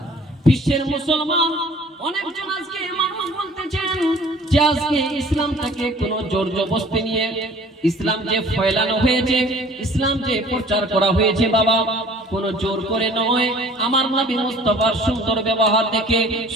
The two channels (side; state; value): both; normal; correlation 0.50